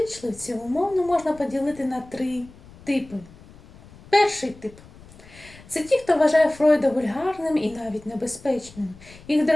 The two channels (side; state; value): left; noise; rumble, 22 dB below the sound